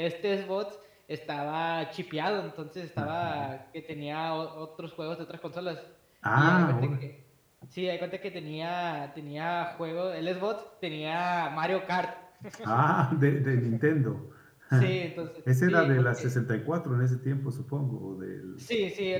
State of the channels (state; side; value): identical; both; correlation 1.00